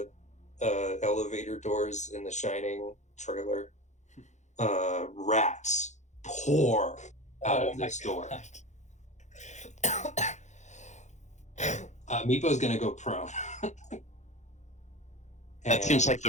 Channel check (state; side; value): late; right; 0.34 ms